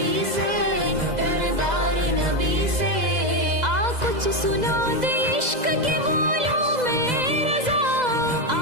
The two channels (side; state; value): left; late; 2.0 ms